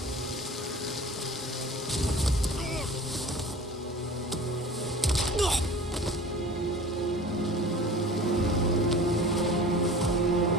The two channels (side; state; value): both; normal; correlation 0.41